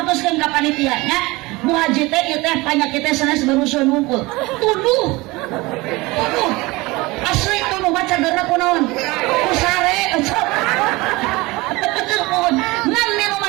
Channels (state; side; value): quieter; left; 22.3 dB